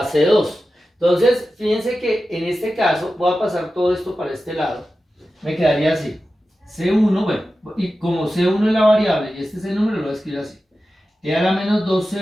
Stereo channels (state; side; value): normal; both; correlation 0.93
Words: c2. Entonces fíjense que en este caso voy a pasar todo esto para este lado. Me quedaría así. C1, bueno, y como C1 es la variable y este es el número, lo voy a escribir así. E a la menos